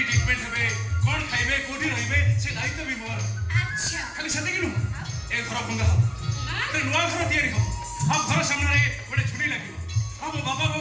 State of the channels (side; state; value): both; identical; correlation 1.00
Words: ट्रीटमेंट हेबे कौन खाइबे कोठी रहिबे से दायित्व भी मोर अच्छा खाली सते किनु ए घर भंगा हो ते नुआ घर तयारी हो अब घर सामने रे बड़े छुरी लागियो अब बाबा को